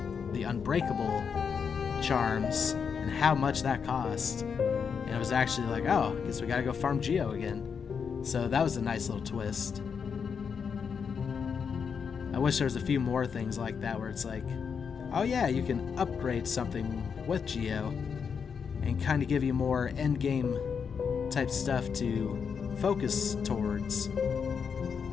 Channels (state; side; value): quieter; right; 6.4 dB